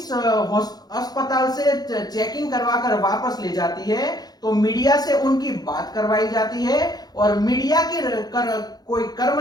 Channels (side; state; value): right; late; 0.19 ms